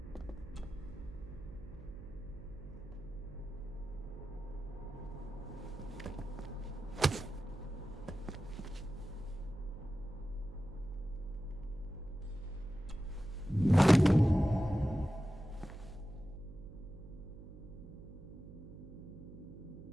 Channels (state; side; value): noise; right; hum, 15 dB below the sound